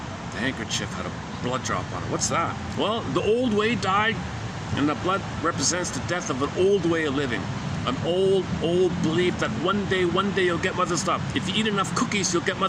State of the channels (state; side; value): identical; both; correlation 1.00